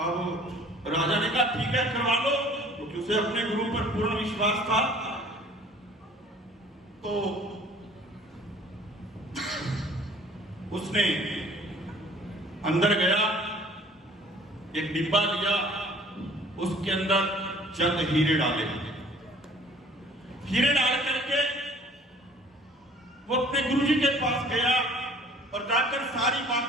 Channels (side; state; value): both; normal; correlation 0.52